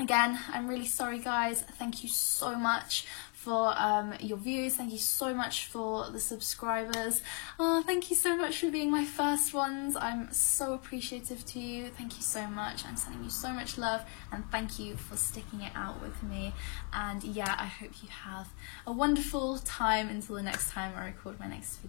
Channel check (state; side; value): quieter; right; 38.7 dB